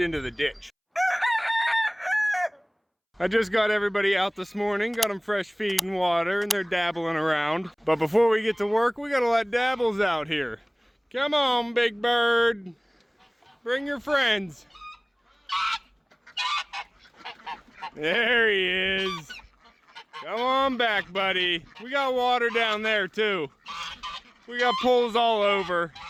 the ditch. I just got everybody out this morning, got them fresh feed and water, and they're dabbling around. But before we get to work, we gotta let Dabbles out here. Come on, big bird. Bring your friends. There he is. Come on back, buddy. We got water down there too. We got pools all over.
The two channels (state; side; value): identical; both; correlation 1.00